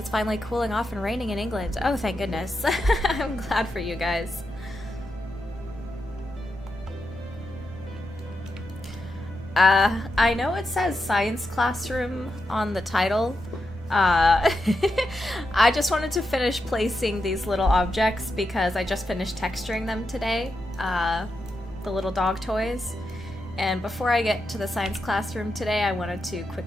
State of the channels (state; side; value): normal; both; correlation 0.86